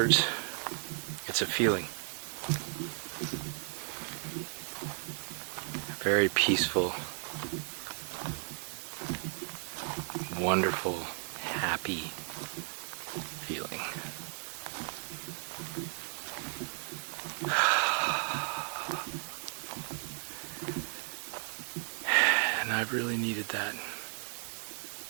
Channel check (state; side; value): silent; left; 55 dB below the other